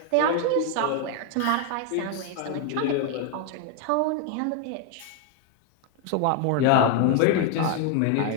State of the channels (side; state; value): both; different; correlation 0.00